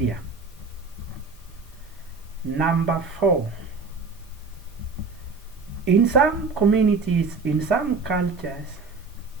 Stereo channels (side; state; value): left; quieter; 4.4 dB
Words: Number 4, in some communities, in some cultures,